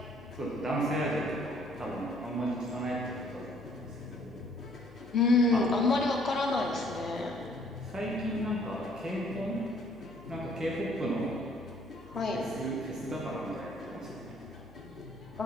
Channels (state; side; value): noise; left; hum, 21 dB below the sound